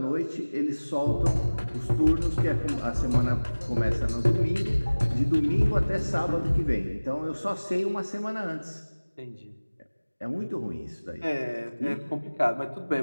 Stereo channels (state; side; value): inverted; both; correlation -1.00